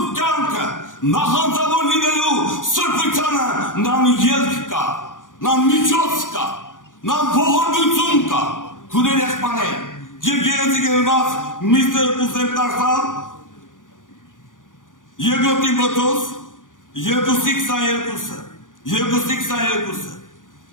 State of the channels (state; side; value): late; right; 0.88 ms